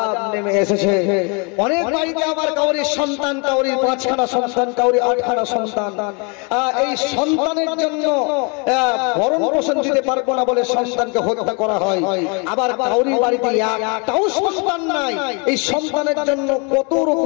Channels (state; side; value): quieter; right; 33.5 dB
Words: নেমে এসেছে। অনেক বাড়িতে আবার কাউরির সন্তান, কাউরির 5খানা সন্তান, কাউরির 8খানা সন্তান, এই সন্তানের জন্য ভরণ পোষণ দিতে পারবো না বলে সন্তানকে হত্যা করা হয়। আবার কাউরির বাড়িতে একটাও সন্তান নাই, এই সন্তানের জন্য কত